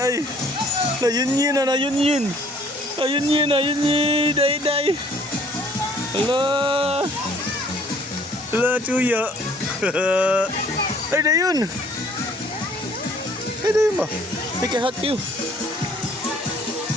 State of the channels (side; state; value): both; normal; correlation 0.58